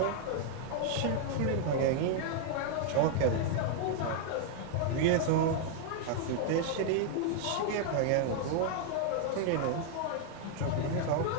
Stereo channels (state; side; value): different; both; correlation 0.00